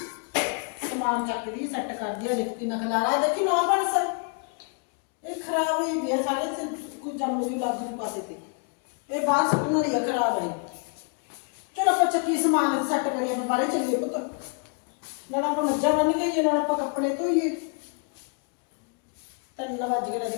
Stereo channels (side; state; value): right; quieter; 39.3 dB